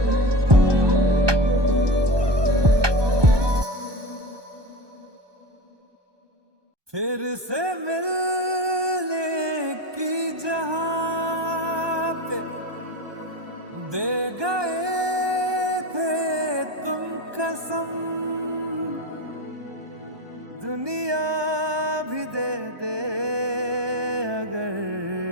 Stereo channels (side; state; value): left; late; 1.2 ms